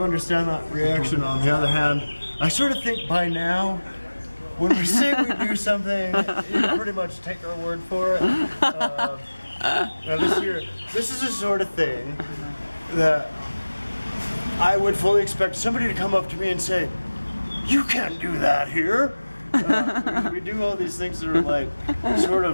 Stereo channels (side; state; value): both; inverted; correlation -1.00